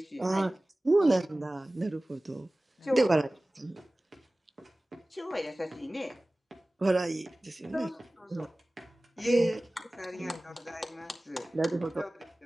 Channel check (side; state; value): both; normal; correlation 0.98